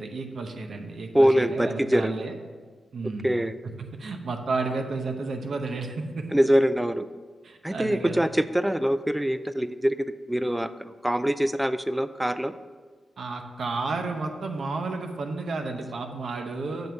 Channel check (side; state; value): both; normal; correlation 0.96